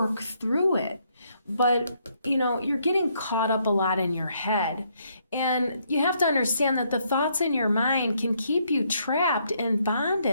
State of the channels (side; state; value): both; inverted; correlation -0.72